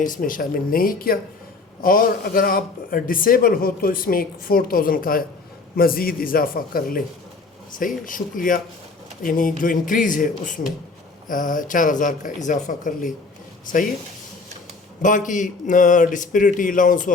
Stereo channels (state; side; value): quieter; right; 3.9 dB